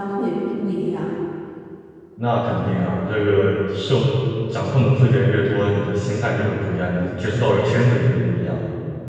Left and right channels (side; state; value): both; identical; correlation 1.00